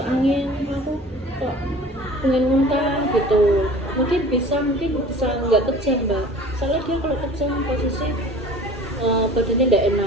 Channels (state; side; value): normal; both; correlation 0.44